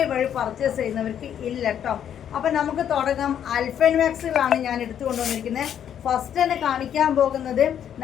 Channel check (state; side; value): quieter; right; 9.4 dB